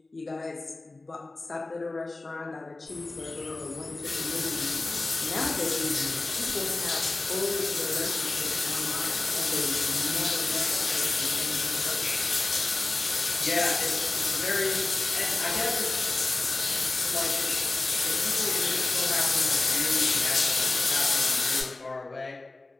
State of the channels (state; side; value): quieter; right; 3.2 dB